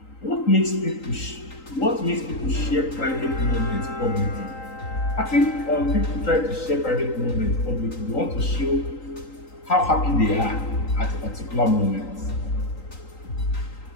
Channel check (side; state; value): right; late; 3.8 ms